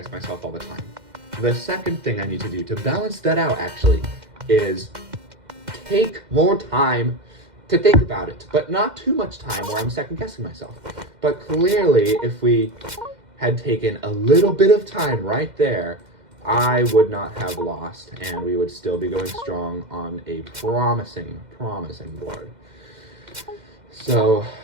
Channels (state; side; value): late; left; 2.1 ms